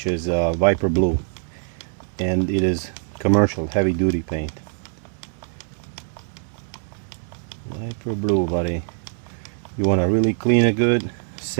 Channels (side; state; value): left; silent; 63 dB below the other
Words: is Viper Blue, and it is commercial heavy duty paint. Viper Blue, buddy. You want to really clean it good,